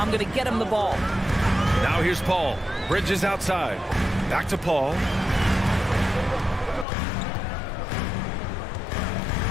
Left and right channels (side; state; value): right; drops out; at 6.9 s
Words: going to get him the ball. Now here's Paul. Bridges outside. Back to Paul.